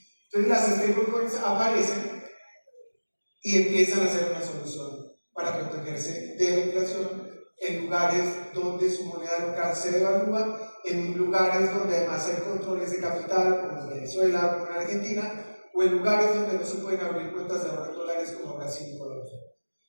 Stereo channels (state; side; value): inverted; both; correlation -1.00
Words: Entonces las stablecoins aparecen y empiezan a ser una solución para protegerse de la inflación en lugares donde su moneda local se devalúa, en lugares donde además hay controles de capital, como en Venezuela, como en Argentina, o en lugares donde no se pueden abrir cuentas de ahorro en dólares como Brasil y Colombia.